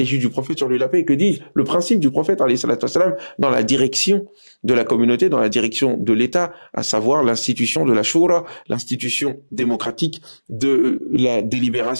du prophète sur lui la paix et que dit le principe du prophète alayhi salatu wassalam, dans la direction de la communauté, dans la direction de l'État, à savoir l'institution de la Shura, l'institution démocratique de la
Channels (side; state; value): both; inverted; correlation -1.00